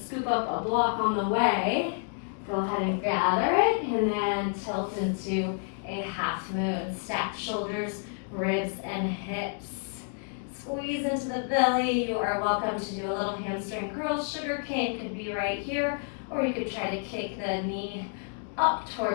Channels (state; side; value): silent; right; 55 dB below the other